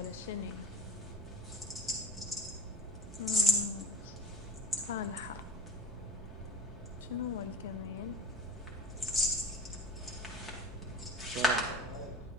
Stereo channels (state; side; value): normal; both; correlation 0.35